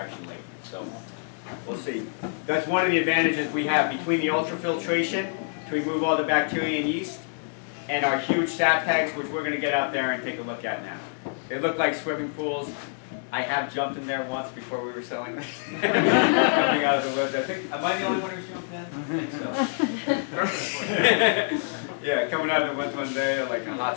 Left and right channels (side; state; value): right; silent; digital silence